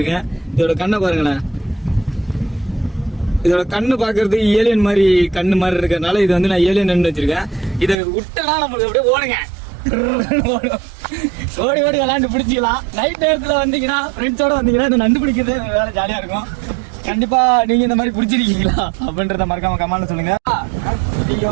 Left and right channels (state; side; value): drops out; left; at 8.0 s